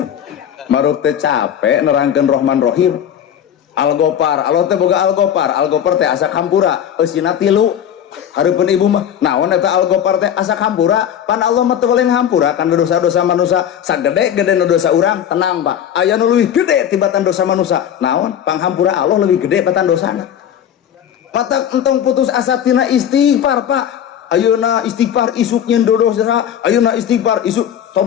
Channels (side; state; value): right; quieter; 9.6 dB